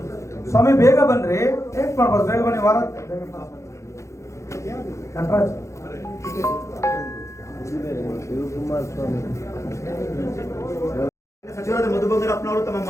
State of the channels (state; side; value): late; right; 0.14 ms